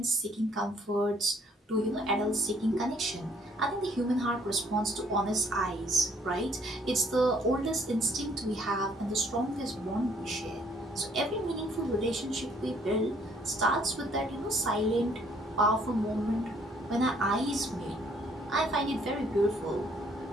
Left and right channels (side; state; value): both; normal; correlation 0.63